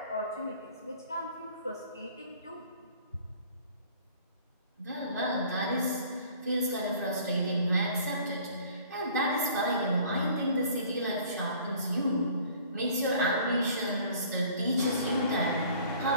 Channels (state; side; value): inverted; both; correlation -0.52